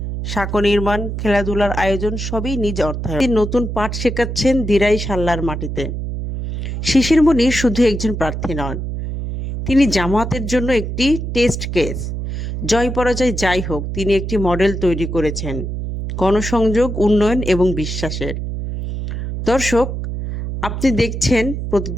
সাঁকো নির্মাণ, খেলাধুলার আয়োজন সবই নিজ অর্থায়নে। তিনি নতুন পাঠ শেখাচ্ছেন দিরাই সাল্লার মাটিতে। শিশির মনির শুধু একজন প্রার্থী নন, তিনি জামাতের জন্য একটি টেস্ট কেস। জয় পরাজয় যাই হোক, তিনি একটি মডেল তৈরি করেছেন গণসংযোগ, উন্নয়ন এবং বিশ্বাসের। দর্শক, আপনি দেখছেন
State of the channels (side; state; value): right; noise; hum, 5 dB below the sound